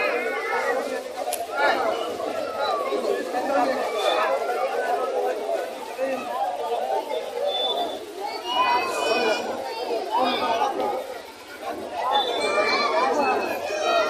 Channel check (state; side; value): identical; both; correlation 1.00